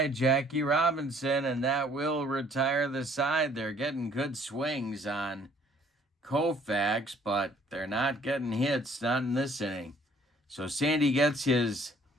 Jackie Robinson, and that will retire the side. They're getting good swings on Koufax, but they're not getting hits, not in this inning. So Sandy gets his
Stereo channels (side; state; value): both; normal; correlation 0.59